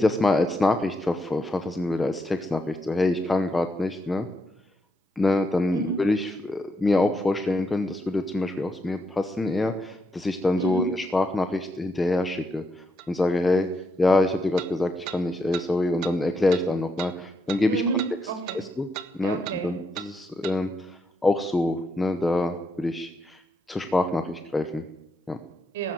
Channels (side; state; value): both; normal; correlation 0.80